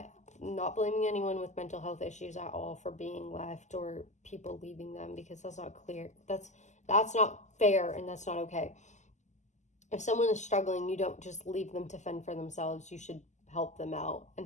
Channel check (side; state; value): right; late; 0.34 ms